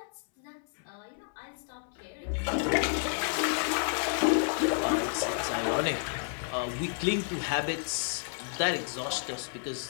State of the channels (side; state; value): right; silent; 57 dB below the other